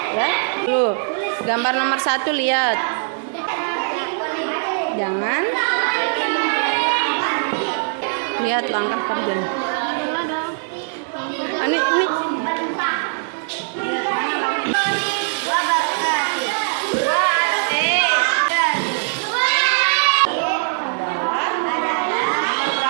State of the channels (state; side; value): silent; left; 65 dB below the other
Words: ya. Dulu gambar nomor 1 lihat. Jangan lihat langkah kerjanya. Ini